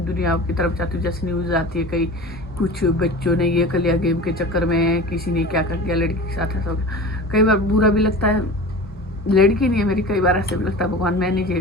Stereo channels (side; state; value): both; normal; correlation 0.35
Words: दुनिया की तरफ जाती हूँ। जैसे न्यूज़ आती है, कहीं कुछ बच्चों ने ये कर लिया गेम के चक्कर में, किसी ने क्या कर दिया लड़की के साथ, ऐसा हो गया। कई बार बुरा भी लगता है, लड़की नहीं है मेरी, कई बार ऐसे भी लगता है भगवान मैं नहीं